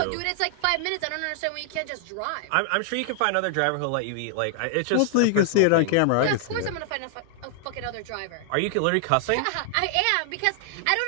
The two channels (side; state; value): both; different; correlation 0.00